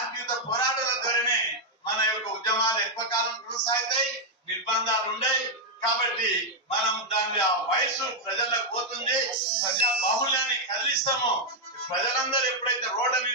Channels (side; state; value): both; normal; correlation -0.01